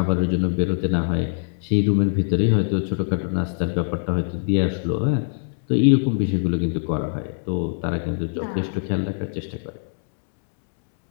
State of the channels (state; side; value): silent; right; 64 dB below the other